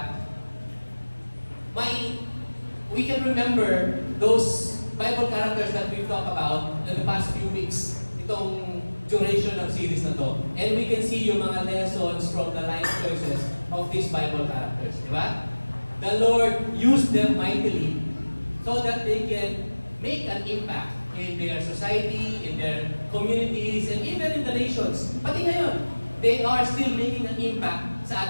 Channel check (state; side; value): inverted; both; correlation -1.00